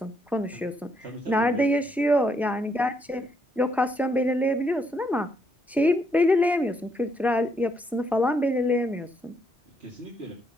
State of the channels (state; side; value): normal; both; correlation 0.75